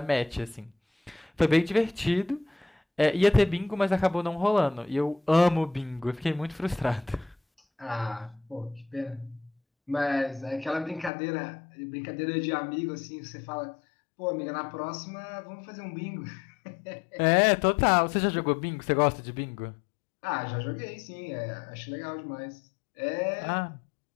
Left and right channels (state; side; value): drops out; right; at 11.1 s